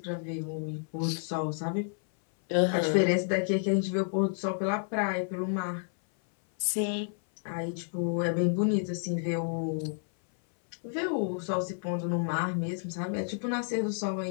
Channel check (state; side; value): silent; right; 58 dB below the other